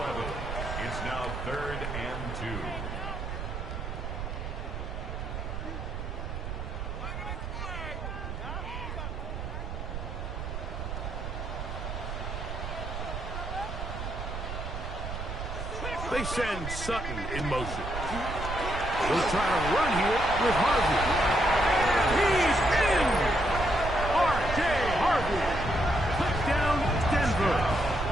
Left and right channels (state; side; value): noise; right; rumble, 6 dB below the sound